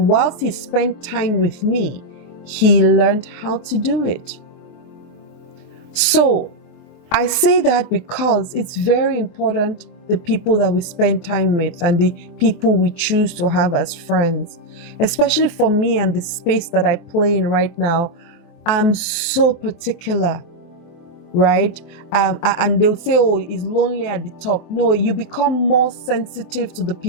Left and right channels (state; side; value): late; right; 23 ms